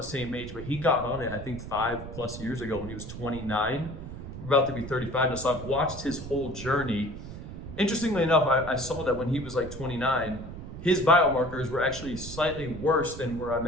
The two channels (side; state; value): right; noise; rumble, 10 dB below the sound